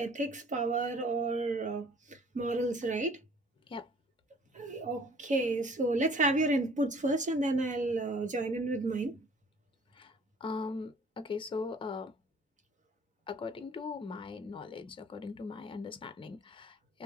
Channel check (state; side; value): normal; both; correlation 0.54